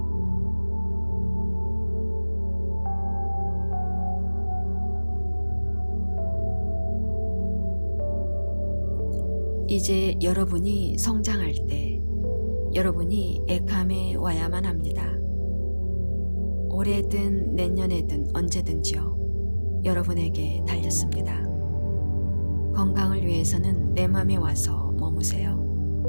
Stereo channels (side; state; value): both; inverted; correlation -1.00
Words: 이제 여러분이 성장할 때 여러분이 에캄에 와야만 합니다. 올해든 내년에든 언제든지요. 여러분에게 달렸습니다. 건강을 위해서는 내 맘에 와서 머무세요.